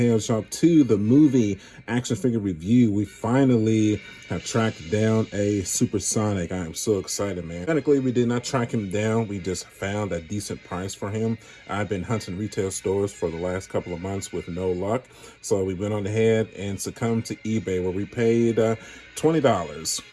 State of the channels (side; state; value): both; identical; correlation 1.00